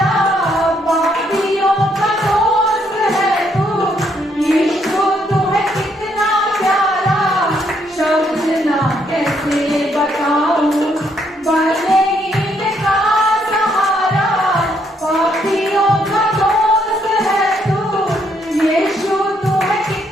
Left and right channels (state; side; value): normal; both; correlation 0.72